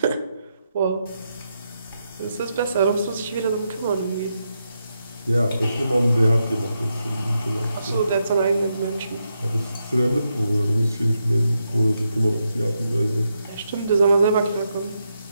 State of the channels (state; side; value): inverted; both; correlation -0.83